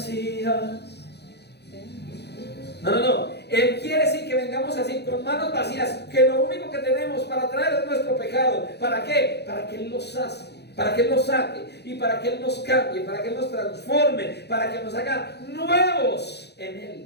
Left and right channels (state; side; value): late; right; 0.48 ms